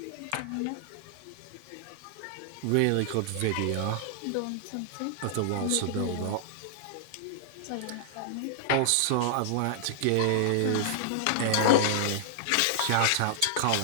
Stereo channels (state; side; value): different; both; correlation -0.01